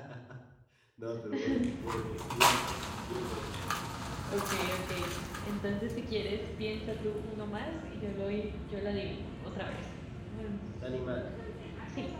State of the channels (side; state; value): both; identical; correlation 1.00